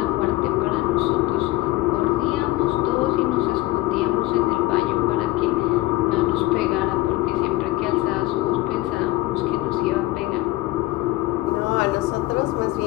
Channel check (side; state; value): right; quieter; 18.3 dB